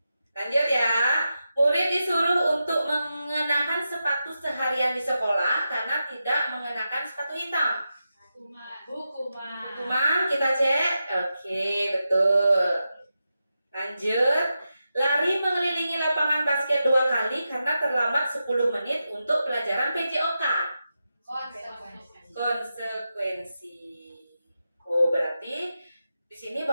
Lanjut ya. Murid disuruh untuk mengenakan sepatu seharian di sekolah karena tidak mengenakan sepatu hitam. Hukuman, kita cek. Oke, betul. Lanjut. Lari mengelilingi lapangan basket 2 kali karena terlambat 10 menit untuk pelajaran PJOK. Konsekuensi. Oh, berarti di sini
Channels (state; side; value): inverted; both; correlation -0.89